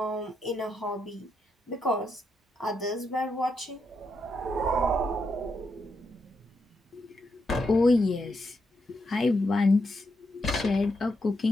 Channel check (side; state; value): both; normal; correlation 0.82